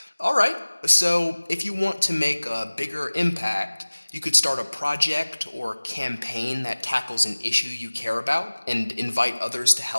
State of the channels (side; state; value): both; inverted; correlation -1.00